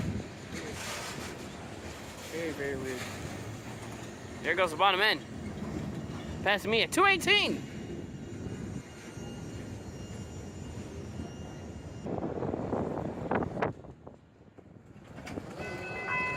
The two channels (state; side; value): identical; both; correlation 1.00